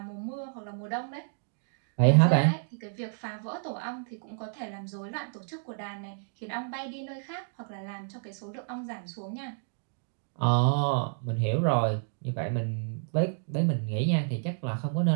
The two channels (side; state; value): left; silent; digital silence